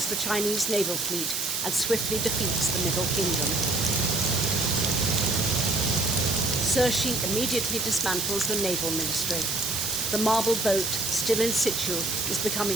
the Chinese naval fleet and swiftly defeats the Middle Kingdom. Cixi immediately dismantles the naval ministry. The marble boat, still in situ, is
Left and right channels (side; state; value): right; noise; hiss, 2 dB below the sound